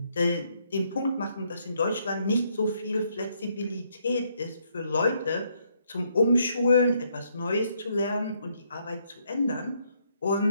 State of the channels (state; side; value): inverted; both; correlation -0.73